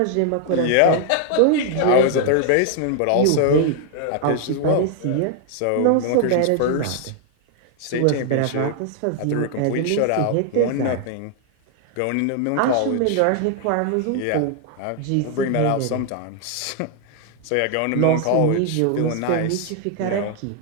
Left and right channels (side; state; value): both; different; correlation 0.00